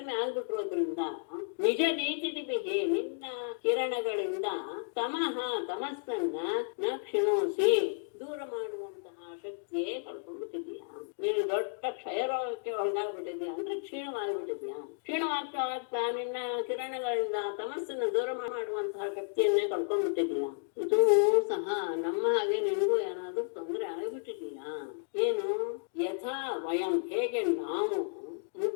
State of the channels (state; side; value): silent; right; digital silence